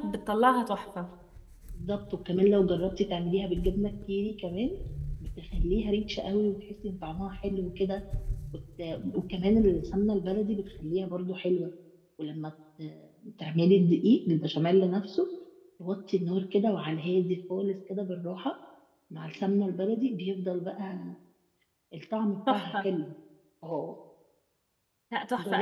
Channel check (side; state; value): both; identical; correlation 1.00